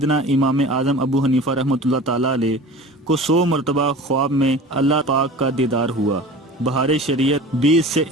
امام اعظم ابو حنیفہ رحمۃ اللہ تعالیٰ علیہ کو 100 مرتبہ خواب میں اللہ پاک کا دیدار ہوا۔ بہار شریعت 20 سے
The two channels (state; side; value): normal; both; correlation 0.38